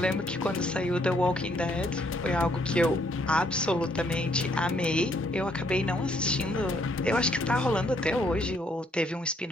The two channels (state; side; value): normal; both; correlation 0.69